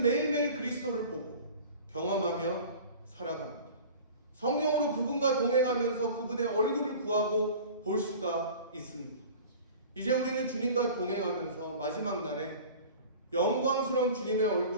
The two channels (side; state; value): both; inverted; correlation -0.41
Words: 매일매일 그리스도를 보고 경험하며 살아갑니다. 성령으로 그분과 동행하면서 그분의 얼굴을 구하고 볼 수가 있습니다. 이제 우리는 주님과 동행하면서 마지막 날에 영광스러운 주님의